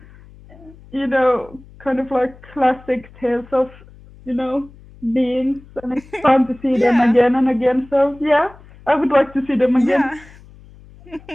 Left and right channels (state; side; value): noise; left; hum, 23 dB below the sound